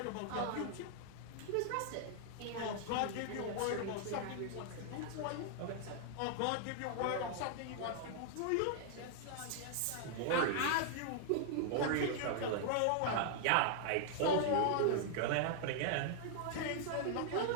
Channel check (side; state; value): both; different; correlation -0.01